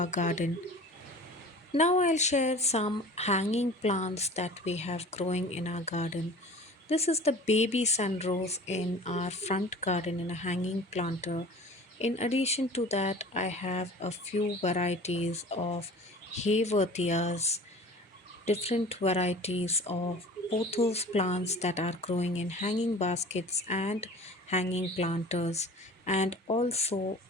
garden. Now I'll share some hanging plants that we have growing in our garden. This is the baby sunrose in our front garden in a hanging planter. In addition to that, I have a few varieties of Haworthias, different varieties of pothos plants that are growing in hanging baskets and hanging planters, and also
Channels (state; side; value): normal; both; correlation 0.42